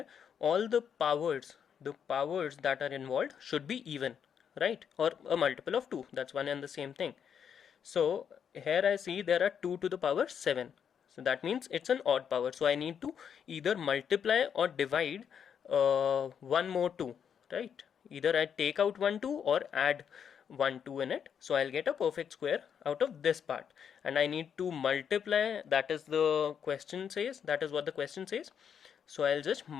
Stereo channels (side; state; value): right; quieter; 7.8 dB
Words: all the powers that are involved should be even, right? Or a multiple of 2. That's one and the same thing. So here I see there are 2 to the power 7. So that means it's an odd power. So I need to either multiply or divide one more 2, right? Either I take out 1 2 or add 1 2 in it. So I'll get a perfect square out of this part, and I need to multiply. That is the question says. That is what the question says. So I'll just